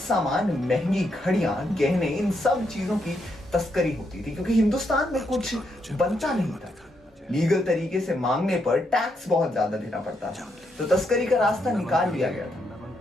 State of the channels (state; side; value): normal; both; correlation 0.79